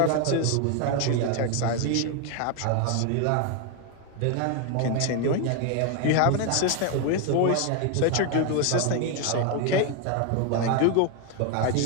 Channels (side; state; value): both; different; correlation 0.01